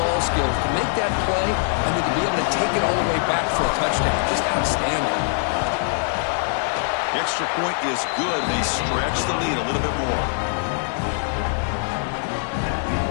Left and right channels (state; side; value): silent; right; 64 dB below the other